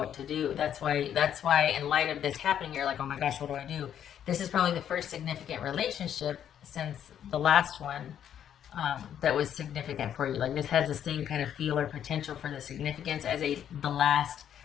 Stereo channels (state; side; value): quieter; right; 9.6 dB